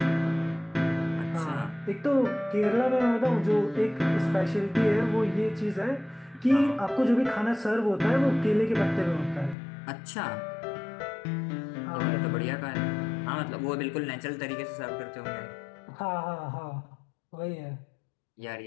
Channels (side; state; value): right; drops out; at 9.6 s